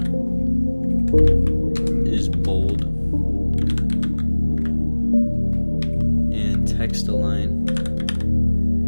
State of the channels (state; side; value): inverted; both; correlation -1.00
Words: is bold, and text align